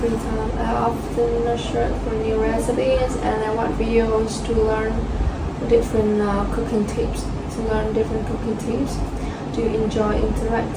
I often search for new recipes, and I watch videos to learn different cooking tips. Do you enjoy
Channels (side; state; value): both; identical; correlation 1.00